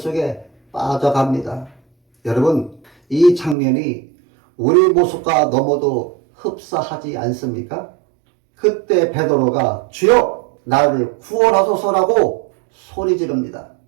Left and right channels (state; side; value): drops out; left; at 3.6 s